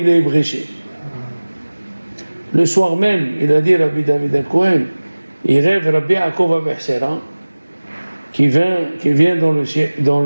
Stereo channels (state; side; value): inverted; both; correlation -1.00